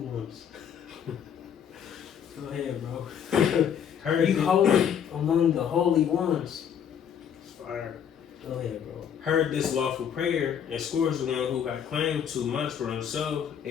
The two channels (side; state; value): right; quieter; 8.4 dB